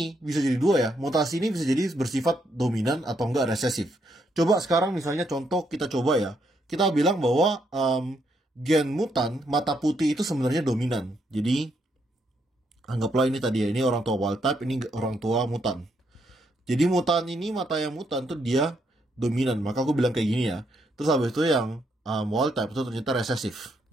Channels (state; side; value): normal; both; correlation 0.76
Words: bisa jadi 2 ya. Mutasi ini bisa jadi bersifat dominan atau enggak resesif. Coba sekarang misalnya contoh kita coba ya. Kita bilang bahwa gen mutan mata putih itu sebenarnya dominan. Jadi anggaplah ini tadi ya. Ini orang tua wild type, ini orang tua mutan. Jadi mutan ini, mata yang mutan tuh dia dominan. Maka aku bilang kayak gini ya. Terus habis itu yang wild type itu ternyata resesif.